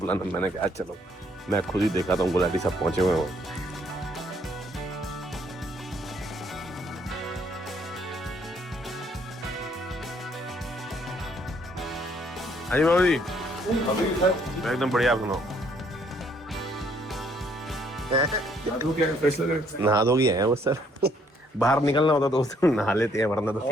मैंने कहा चलो मैं खुद ही देखा था, गुलाटी सब पहुंचे हुए हो। हाँ जी बाबू जी, एकदम बढ़िया, आप सुनाओ। नहा धो गया है वो सर, बाहर निकलना होता तो उस दिन नहा लेते हैं, वरना तो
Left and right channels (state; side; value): normal; both; correlation 0.66